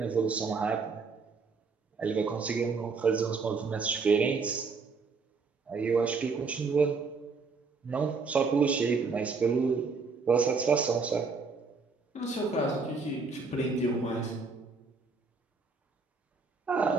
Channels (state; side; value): quieter; left; 4.5 dB